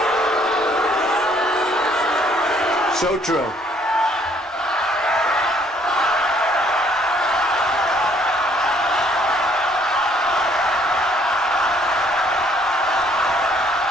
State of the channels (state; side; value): normal; both; correlation 0.64